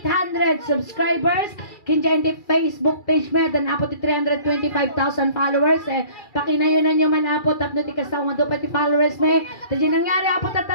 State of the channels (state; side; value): late; right; 2.3 ms